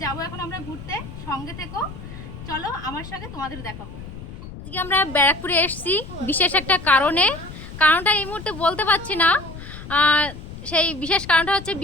যাবো এখন আমরা ঘুরতে। সঙ্গে থেকো, চলো আমার সঙ্গে তোমাদের দেখাবো। আজকে আমরা ব্যারাকপুরে এসেছি বিশেষ একটা কারণটা এই মুহূর্তে বলতে পারছি না। সেই বিশেষ কারণটা হচ্ছে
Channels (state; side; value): noise; left; rumble, 12 dB below the sound